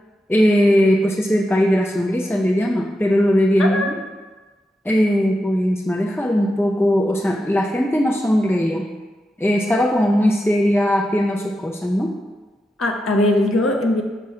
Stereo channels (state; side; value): normal; both; correlation 0.88